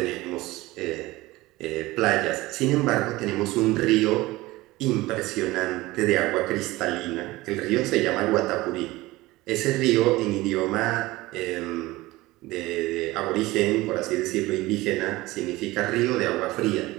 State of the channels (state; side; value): quieter; left; 19.4 dB